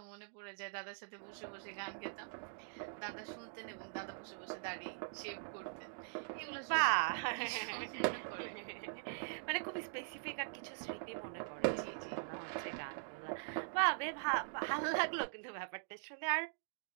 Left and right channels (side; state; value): left; silent; digital silence